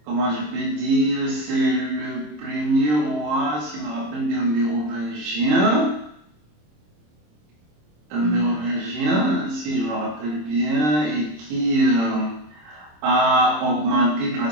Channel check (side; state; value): left; late; 26 ms